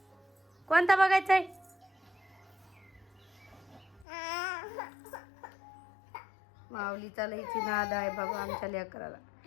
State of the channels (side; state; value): right; drops out; at 4.0 s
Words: कोणता बघायचा आहे? माऊलीचा लईची नाद आहे बाबा आमच्या लेकराला.